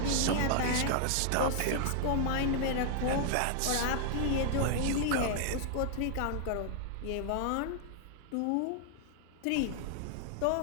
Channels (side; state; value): both; different; correlation -0.01